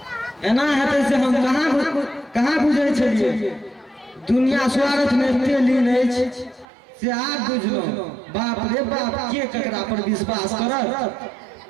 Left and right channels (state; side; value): drops out; left; at 6.7 s